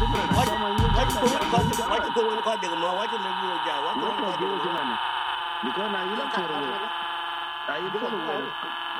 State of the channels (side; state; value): both; identical; correlation 1.00